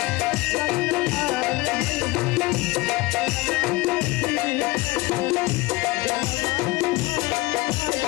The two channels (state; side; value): quieter; right; 21.3 dB